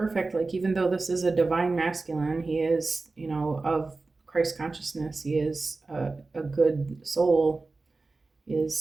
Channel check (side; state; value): left; quieter; 3.6 dB